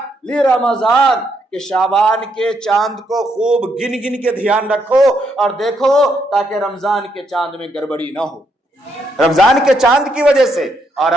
لرمضان، کہ شعبان کے چاند کو خوب گن گن کے دھیان رکھو اور دیکھو تاکہ رمضان کے چاند میں گڑبڑی نہ ہو، رمضان کے چاند کی وجہ سے۔ اور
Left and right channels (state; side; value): normal; both; correlation 0.77